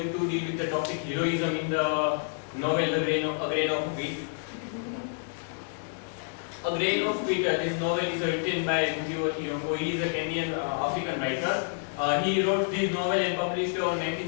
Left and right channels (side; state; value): right; silent; digital silence